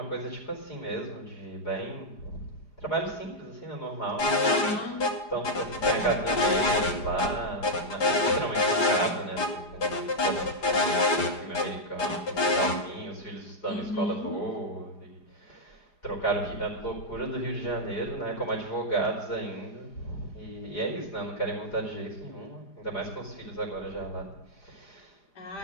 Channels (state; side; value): late; right; 5.1 ms